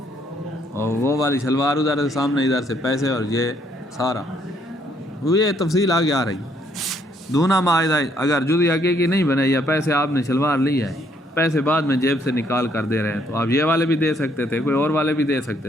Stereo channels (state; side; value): normal; both; correlation 0.69